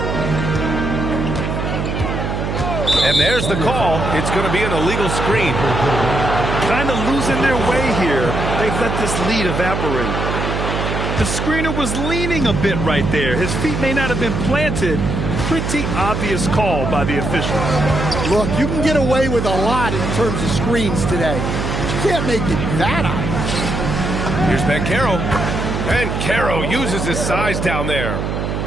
And there's the call. It's going to be an illegal screen. Kind of losing their way here. They've let this lead evaporate. The screener was leaning a bit right there. His feet may not have been planted. Pretty obvious call by the officials. Look, you can get away with a lot in terms of screens today. You can't make it that obvious. Here's Banchero. Banchero uses his size down there.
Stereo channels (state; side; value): noise; right; hum, 2 dB below the sound